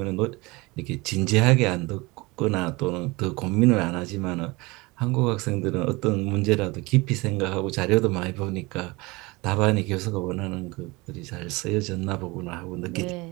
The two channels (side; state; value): left; quieter; 23.9 dB